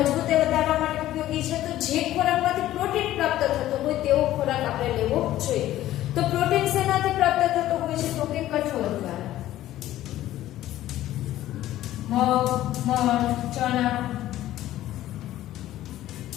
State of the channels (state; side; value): quieter; right; 14.0 dB